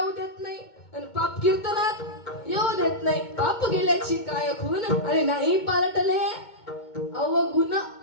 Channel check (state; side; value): late; right; 2.2 ms